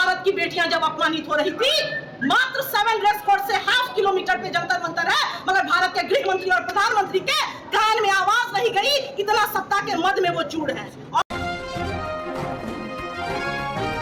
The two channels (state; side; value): identical; both; correlation 1.00